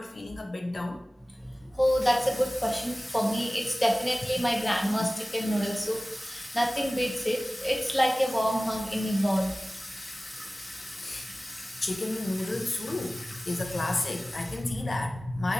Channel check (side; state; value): both; normal; correlation 0.97